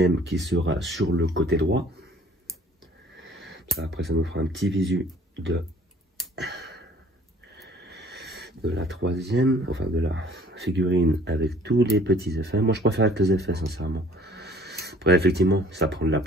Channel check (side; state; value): both; normal; correlation 0.55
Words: qui sera sur le côté droit. Après, ça nous fera un petit visu de la troisième, enfin de la figurine avec tous les petits effets. Moi, je préfère avec les effets, sincèrement. Après, effectivement, ça prend de la